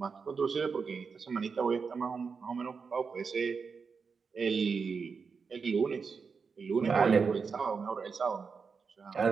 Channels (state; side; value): quieter; left; 5.4 dB